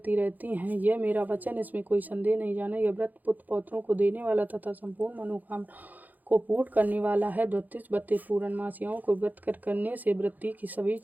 रहती हैं। यह मेरा वचन, इसमें कोई संदेह नहीं जाना। यह व्रत पुत्र पौत्रों को देने वाला तथा संपूर्ण मनोकामना को पूर्ण करने वाला है। 32 पूर्णमासियों को व्रत करने से वृत्ति की सभी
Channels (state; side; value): late; left; 0.083 ms